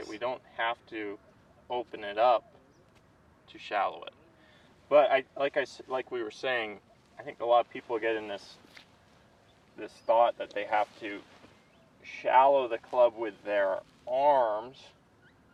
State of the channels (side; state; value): both; identical; correlation 1.00